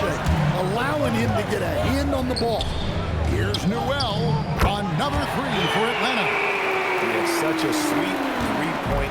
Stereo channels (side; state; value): both; identical; correlation 1.00